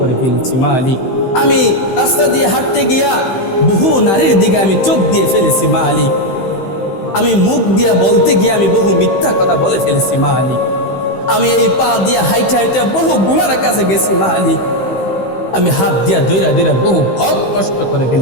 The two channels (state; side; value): late; right; 16 ms